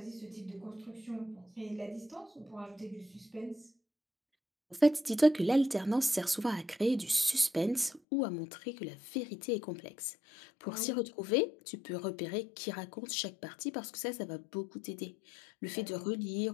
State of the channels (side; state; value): right; drops out; at 8.0 s